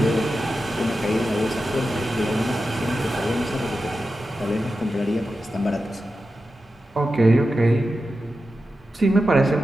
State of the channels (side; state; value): both; normal; correlation 0.91